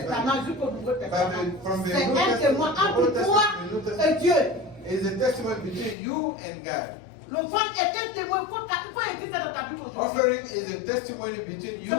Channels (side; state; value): right; drops out; at 6.0 s